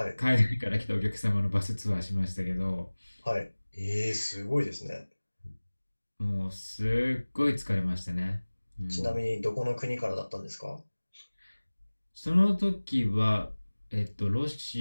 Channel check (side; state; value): both; inverted; correlation -1.00